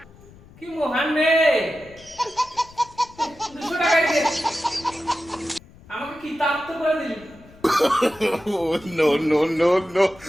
কি মহান মেয়ে। 200 টাকাই দে। আমাকে কিতাব তো করে দিলি।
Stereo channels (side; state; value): left; noise; rumble, 23 dB below the sound